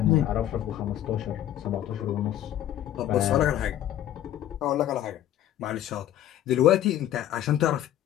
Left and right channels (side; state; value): right; quieter; 12.0 dB